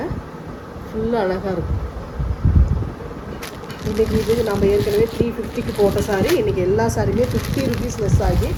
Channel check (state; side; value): identical; both; correlation 1.00